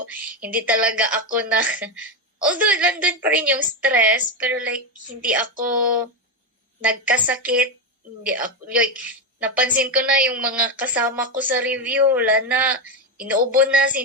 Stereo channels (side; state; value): both; normal; correlation 0.10